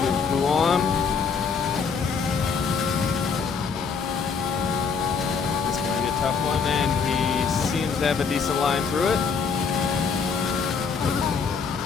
Guam. This is going to be a tough one, and he seems to have a decent line through it.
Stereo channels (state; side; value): quieter; right; 5.7 dB